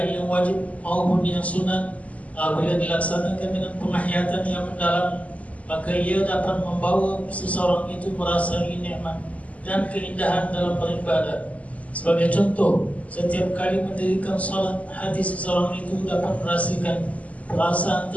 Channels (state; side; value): late; right; 0.070 ms